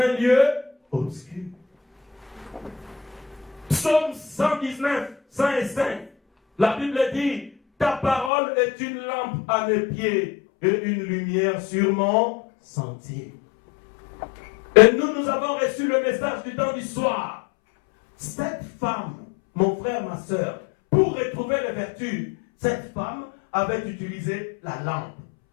lieu obscur. Psaume 119, 105. La Bible dit, ta parole est une lampe à mes pieds et une lumière sur mon sentier. Et nous avons reçu le message du temps du soir. Cette femme, mon frère, ma soeur, pour retrouver les vertus, cette femme avait utilisé la lampe.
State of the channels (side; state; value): right; drops out; at 8.3 s